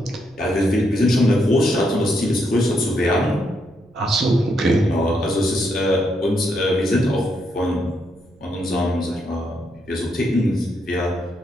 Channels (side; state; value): right; noise; rumble, 28 dB below the sound